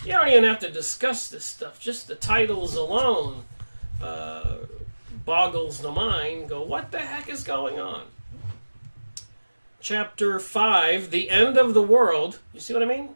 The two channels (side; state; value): both; inverted; correlation -1.00